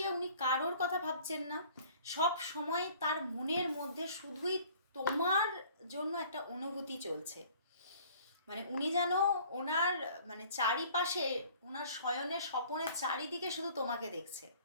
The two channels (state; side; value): inverted; both; correlation -0.52